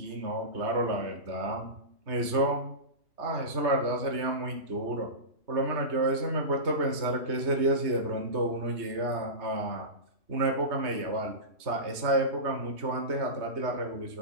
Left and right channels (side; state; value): left; late; 3.2 ms